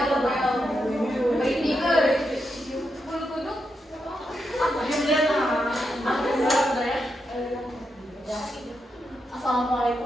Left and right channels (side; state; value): both; normal; correlation 0.84